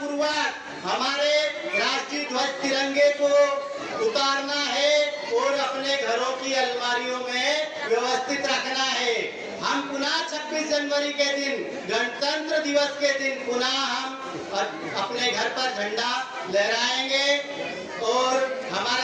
हमारे राष्ट्रीय ध्वज तिरंगे को उतारना है और अपने घरों की अलमारियों में व्यवस्थित रखना है। हम पुनः 26 जनवरी के दिन, गणतंत्र दिवस के दिन पुनः हम अपने घर पर झंडा लहराएंगे और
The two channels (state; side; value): identical; both; correlation 1.00